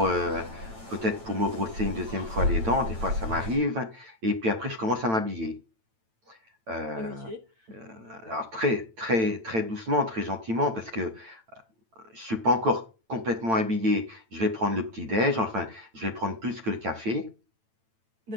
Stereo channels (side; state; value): left; late; 9.0 ms